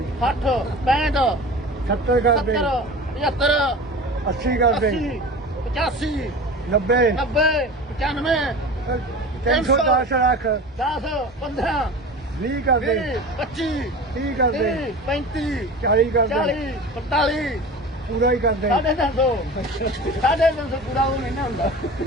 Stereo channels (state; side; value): normal; both; correlation 0.35